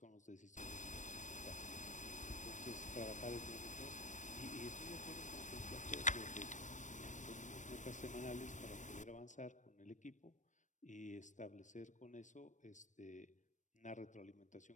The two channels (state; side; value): late; right; 0.36 ms